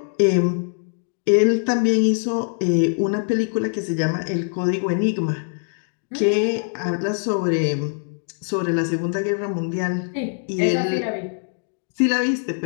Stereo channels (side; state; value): right; silent; digital silence